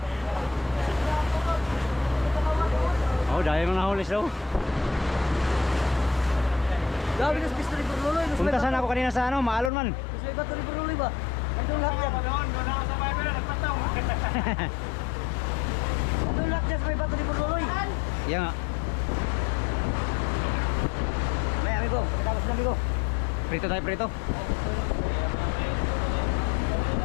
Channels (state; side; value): drops out; right; at 9.7 s